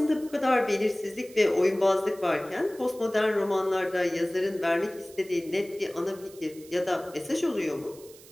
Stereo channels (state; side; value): noise; right; hiss, 22 dB below the sound